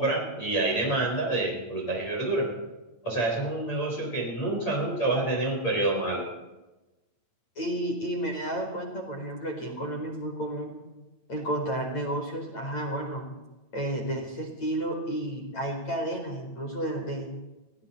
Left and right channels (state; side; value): late; right; 8.8 ms